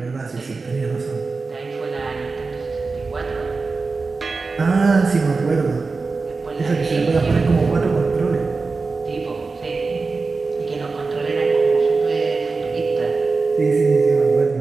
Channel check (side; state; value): left; quieter; 4.1 dB